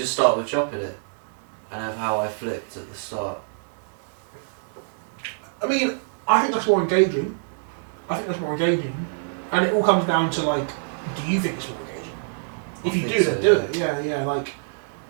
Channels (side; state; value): left; silent; digital silence